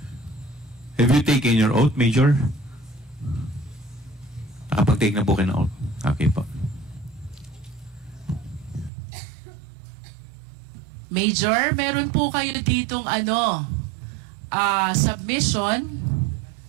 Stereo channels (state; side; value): drops out; left; at 8.9 s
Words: Have you taken your oath, Major? Nakapag-take na po kayo ng oath. Okay po. Major, meron po kayo ditong submission